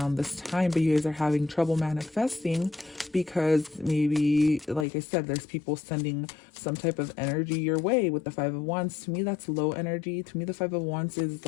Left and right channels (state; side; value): drops out; right; at 4.9 s